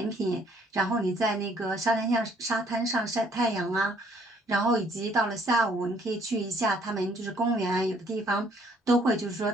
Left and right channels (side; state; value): both; normal; correlation 0.63